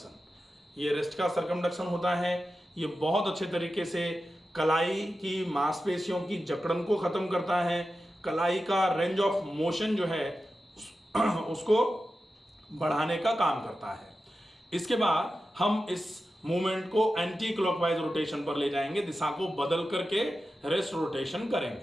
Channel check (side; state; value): both; normal; correlation 0.92